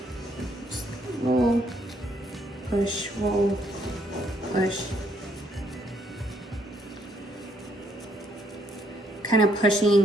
Just roll, push, roll, push. Kind of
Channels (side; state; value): both; normal; correlation 0.71